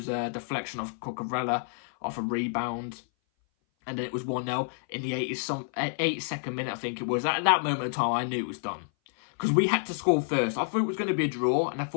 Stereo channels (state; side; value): silent; right; 57 dB below the other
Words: a deflection off Cucurella, off a rebound. And then it was 1-0 in the 82nd minute, I think it was. At that moment of time, I knew it was done. Because we had to score first. I thought it was going to be a draw, and I